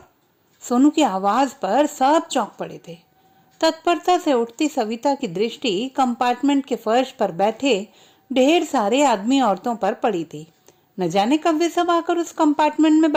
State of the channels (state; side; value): identical; both; correlation 1.00